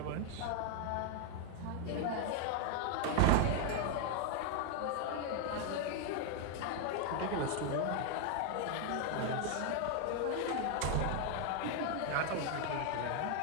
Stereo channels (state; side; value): different; both; correlation 0.00